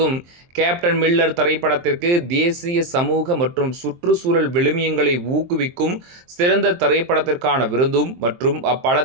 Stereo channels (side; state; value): left; late; 23 ms